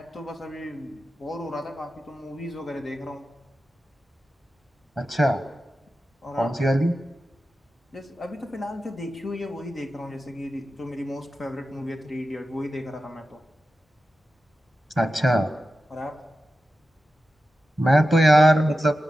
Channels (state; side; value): normal; both; correlation 0.92